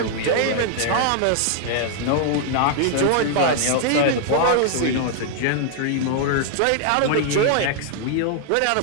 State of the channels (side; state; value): both; different; correlation -0.01